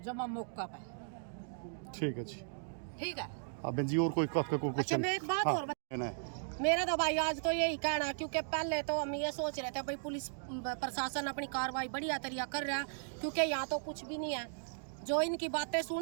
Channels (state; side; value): silent; left; digital silence